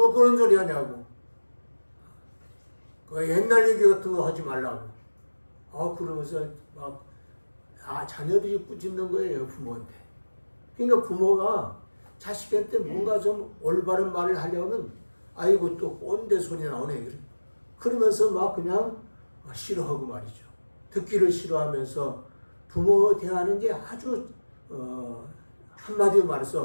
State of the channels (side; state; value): both; inverted; correlation -1.00